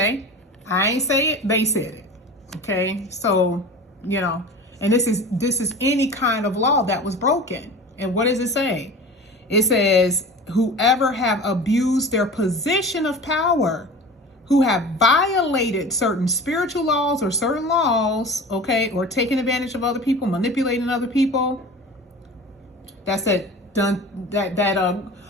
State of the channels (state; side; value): normal; both; correlation 0.36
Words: I ain't say it, they said it, okay? So, and this is any kind of law that was broken. And what does it say? It says, whoever have abused their position of power, who have violated certain spiritual laws or certain laws, okay, or taken advantage of other people, manipulating other people. That's it. Done that